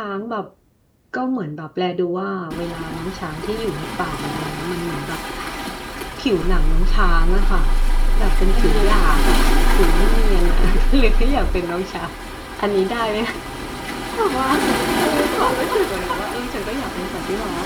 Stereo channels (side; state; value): both; identical; correlation 1.00